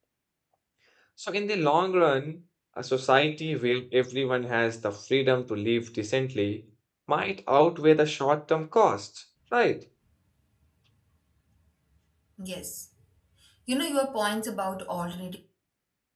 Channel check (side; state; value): both; identical; correlation 1.00